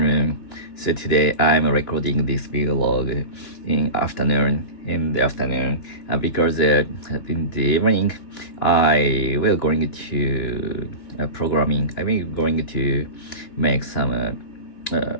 So today I'm recording this vlog in the afternoon because in the evening I will going to programming. I will going to make some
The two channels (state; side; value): late; right; 2.9 ms